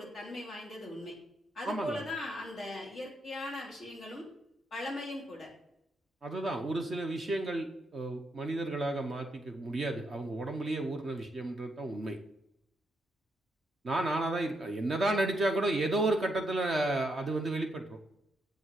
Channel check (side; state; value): both; normal; correlation 0.79